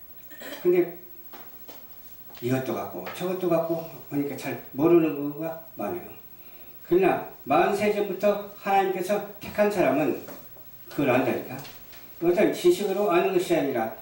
근데 이것도 같고 저것도 같고 하니까 잘 모르는 거가 많아요. 그러나 40세 전부터 하나님께서 택한 사람은 그걸 안다니까. 어떤 지식으로 아는 것이 아니라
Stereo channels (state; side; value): identical; both; correlation 1.00